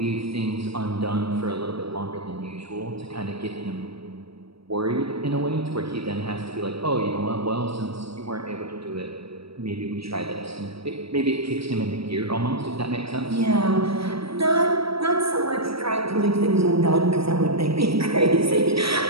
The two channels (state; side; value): late; left; 0.76 ms